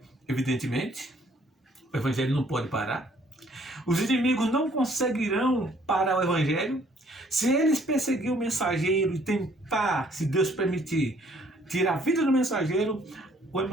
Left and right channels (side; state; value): both; normal; correlation 0.62